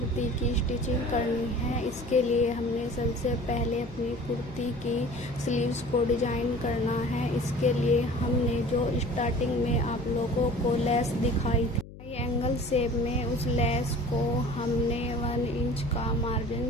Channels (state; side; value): noise; left; hum, 16 dB below the sound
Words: की स्टिचिंग करनी है। इसके लिए हमने सबसे पहले अपनी कुर्ती की स्लीव्स को डिजाइन करना है। इसके लिए हमने जो स्टार्टिंग में आप लोगों को लेस दिखाई थी ट्रायंगल शेप में, उस लेस को हमने 1 इंच का मार्जिन